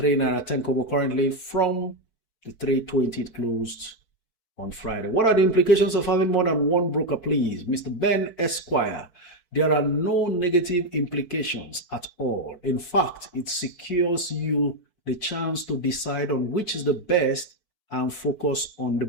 10 kobo currently from the 320 it closed on Friday. What are the implications of having more than one broker, please? Mr. Ben Esquire. There are no negative implications at all. In fact, it secures you the chance to decide on which is the best and focus on the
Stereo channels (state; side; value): late; right; 4.6 ms